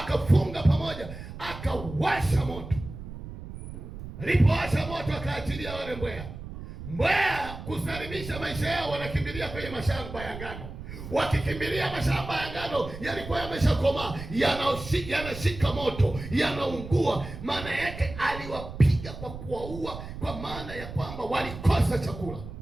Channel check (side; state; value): right; noise; rumble, 11 dB below the sound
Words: pamoja, akawasha moto. Alipowasha moto akaachilia wale mbweha. Mbweha kusalimisha maisha yao, wanakimbilia kwenye mashamba ya ngano. Wakikimbilia mashamba ya ngano yalikuwa yameshakomaa, yanashika moto, yanaungua. Maana yake aliwapiga kwa kuwaua, kwa maana ya kwamba walikosa chakula.